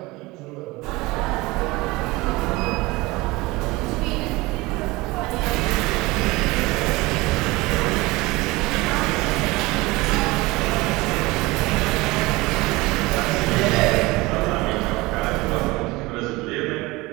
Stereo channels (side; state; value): left; quieter; 21.9 dB